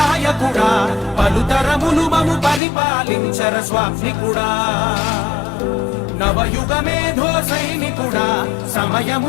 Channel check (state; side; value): drops out; right; at 2.6 s